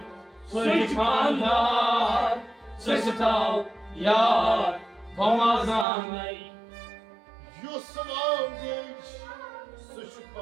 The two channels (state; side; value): drops out; left; at 5.9 s